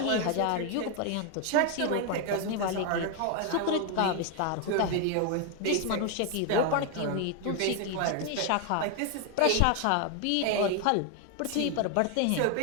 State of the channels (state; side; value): different; both; correlation 0.01